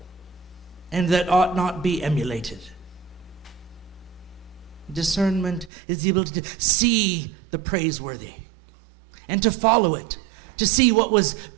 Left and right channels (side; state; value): left; drops out; at 5.7 s